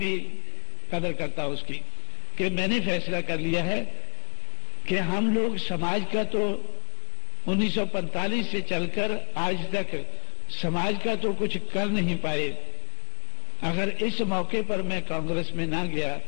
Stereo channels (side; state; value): right; silent; digital silence